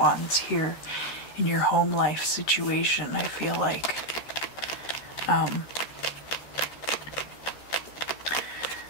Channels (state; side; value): late; right; 13 ms